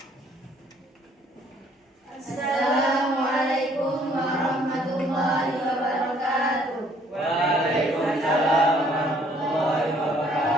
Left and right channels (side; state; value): both; normal; correlation 0.62